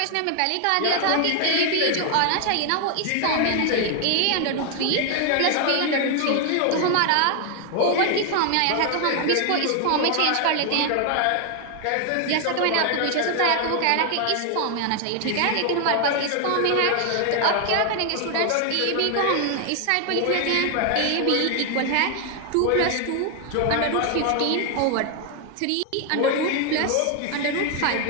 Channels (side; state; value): both; different; correlation 0.00